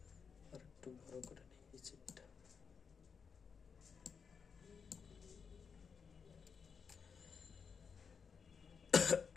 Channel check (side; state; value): right; quieter; 6.1 dB